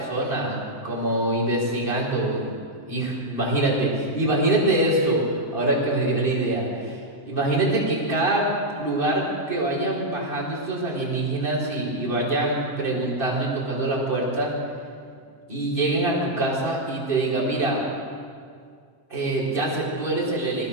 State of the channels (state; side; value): late; right; 7.6 ms